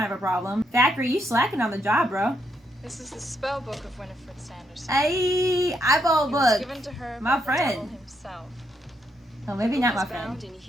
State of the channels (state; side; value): normal; both; correlation 0.77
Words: of a problem. Thackeray, you slacking on the job, bro. This is the spell book of Winifred Sanderson. Hey, eyeball It was book. given to her My by the friend. devil himself. Oh, maybe not my It is friend. bound in